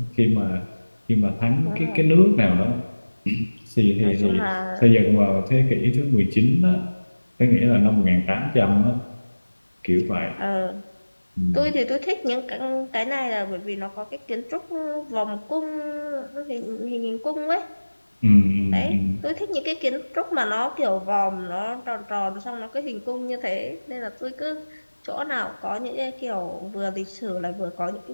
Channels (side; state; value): both; inverted; correlation -1.00